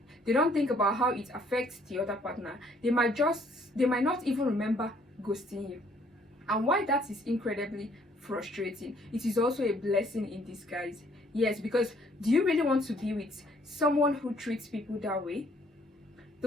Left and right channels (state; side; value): normal; both; correlation 0.63